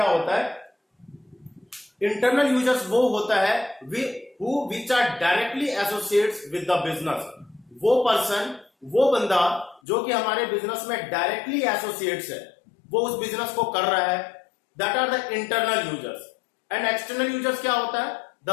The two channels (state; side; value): drops out; right; at 9.8 s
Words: होता है। इंटरनल यूजर्स वो होता है which are directly associates with the business. वो पर्सन, वो बंदा जो कि हमारे बिजनेस में डायरेक्टली एसोसिएट्स है, वो उस बिजनेस को कर रहा है, that are the internal users. And external users क्या होता है,